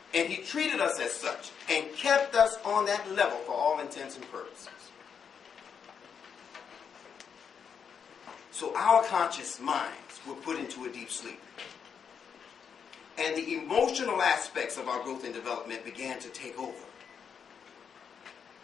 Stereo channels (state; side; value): quieter; right; 7.0 dB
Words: And he treated us as such and kept us on that level for all intents and purposes. So our conscious minds were put into a deep sleep. And the emotional aspects of our growth and development began to take over.